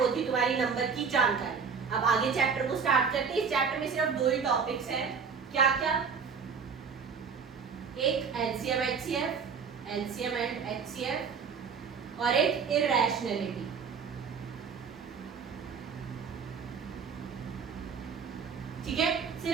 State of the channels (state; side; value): quieter; left; 5.9 dB